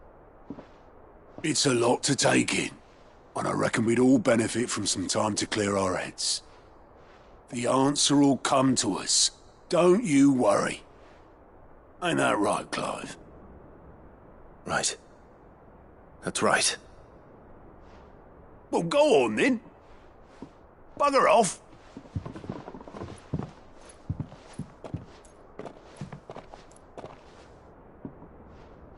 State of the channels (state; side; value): identical; both; correlation 1.00